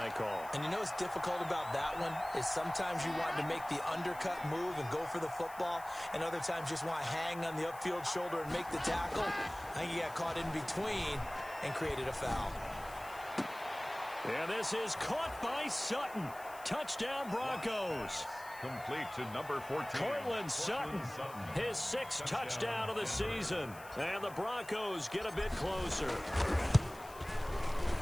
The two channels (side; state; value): left; noise; hiss, 19 dB below the sound